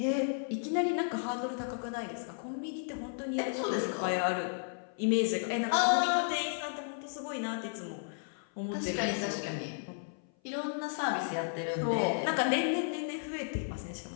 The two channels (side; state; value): right; silent; 55 dB below the other